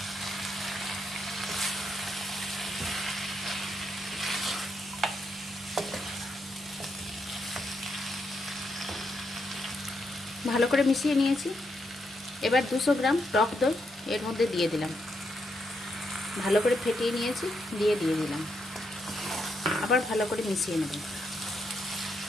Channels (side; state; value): both; normal; correlation 0.80